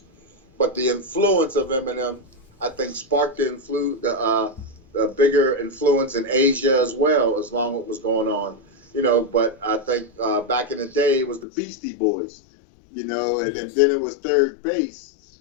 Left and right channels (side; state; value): right; drops out; at 11.5 s